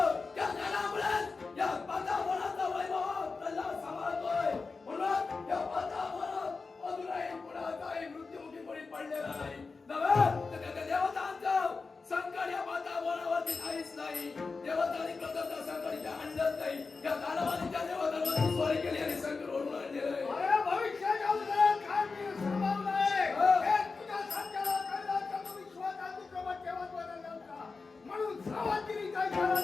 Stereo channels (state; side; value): quieter; right; 4.3 dB